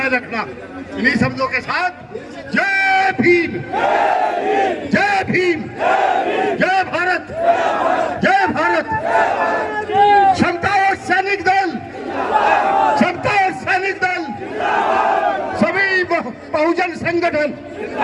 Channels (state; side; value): identical; both; correlation 1.00